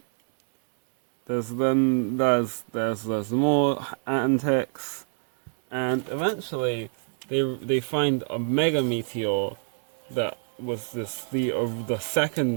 There's more antics, and eventually they find a mega meteor that was the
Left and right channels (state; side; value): silent; left; 60 dB below the other